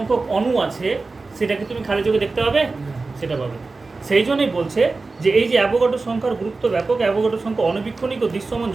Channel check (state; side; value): quieter; left; 3.8 dB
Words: অণু আছে সেটাকে তুমি খালি চোখে দেখতে পাবে? সেটা পাবে। সেই জন্যই বলছে যে এই যে অ্যাভোগাড্রো সংখ্যার গুরুত্ব ব্যাপক। অ্যাভোগাড্রো সংখ্যা অণুবীক্ষণিক ও দৃশ্যমান